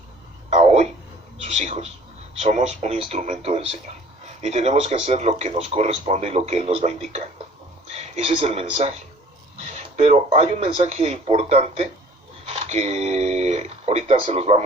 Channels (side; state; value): both; normal; correlation 0.51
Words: a hoy, sus hijos. Somos un instrumento del Señor. Y tenemos que hacer lo que nos corresponde y lo que Él nos va indicando. Ese es el mensaje. Pero hay un mensaje importante que ahorita se los